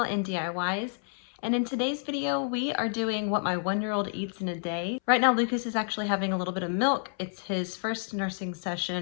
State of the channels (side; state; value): right; silent; 58 dB below the other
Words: and DIYs. And in today's video, we are doing what my 1-year-old eats in a day. Right now, Lucas is actually having a little bit of milk. It's his first nursing